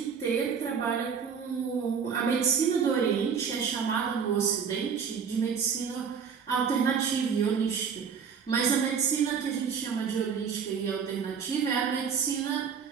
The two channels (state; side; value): quieter; left; 6.7 dB